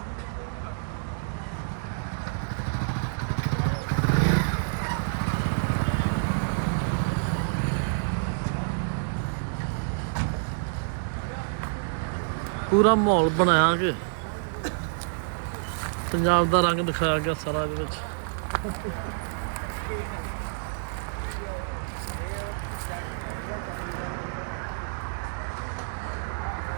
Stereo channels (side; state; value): left; silent; 59 dB below the other